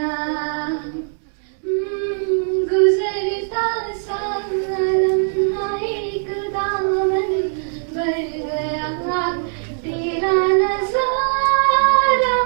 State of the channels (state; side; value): silent; left; 65 dB below the other